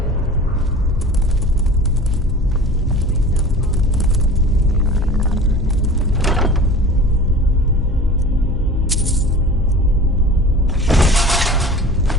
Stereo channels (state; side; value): normal; both; correlation 0.40